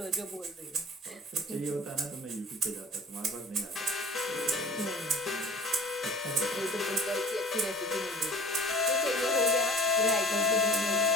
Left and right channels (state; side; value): normal; both; correlation 0.44